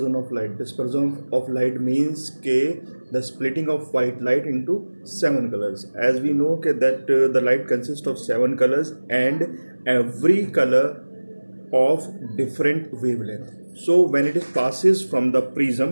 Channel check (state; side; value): inverted; both; correlation -1.00